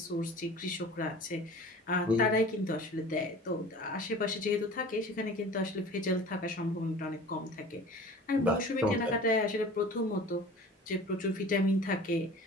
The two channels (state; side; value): normal; both; correlation 0.41